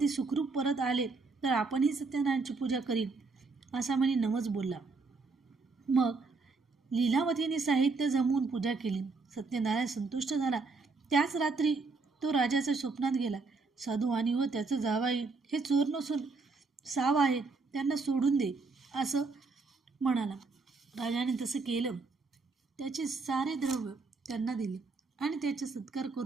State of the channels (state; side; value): quieter; left; 4.0 dB